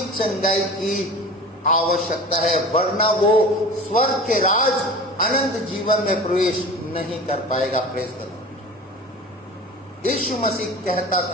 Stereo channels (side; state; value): both; normal; correlation 0.37